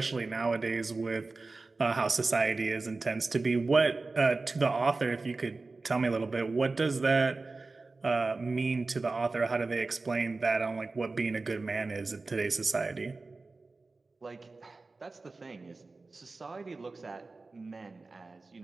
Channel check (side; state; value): left; quieter; 3.6 dB